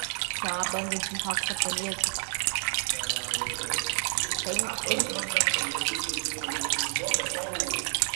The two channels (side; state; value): left; silent; 58 dB below the other